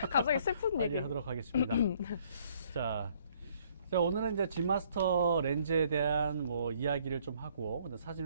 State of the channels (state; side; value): inverted; both; correlation -0.64